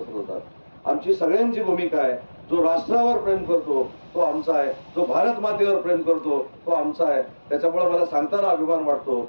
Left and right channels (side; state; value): both; inverted; correlation -1.00